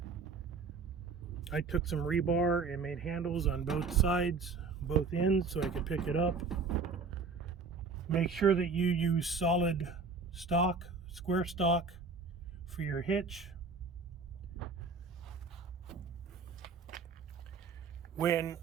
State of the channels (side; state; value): left; quieter; 4.6 dB